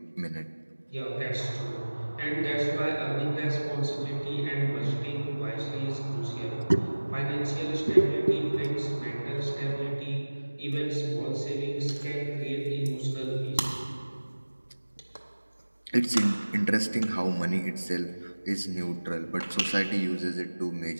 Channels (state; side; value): inverted; both; correlation -1.00